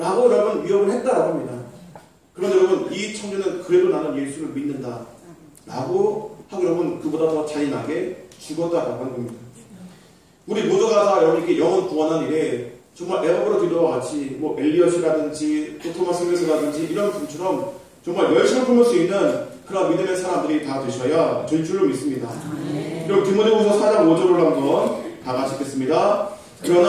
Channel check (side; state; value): both; identical; correlation 1.00